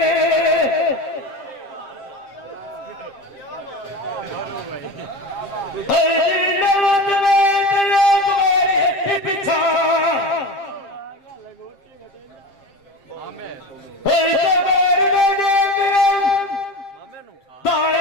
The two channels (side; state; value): right; late; 7.5 ms